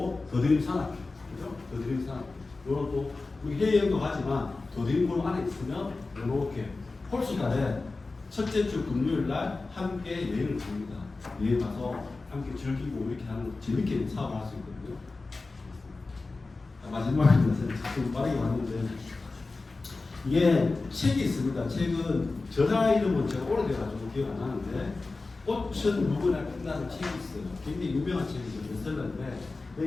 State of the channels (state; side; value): quieter; right; 3.6 dB